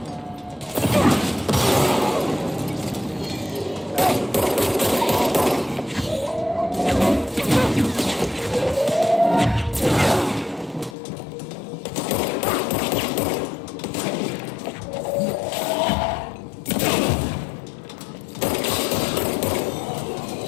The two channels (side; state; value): right; drops out; at 11.0 s